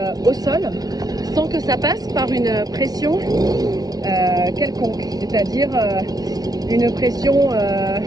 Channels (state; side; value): late; left; 0.19 ms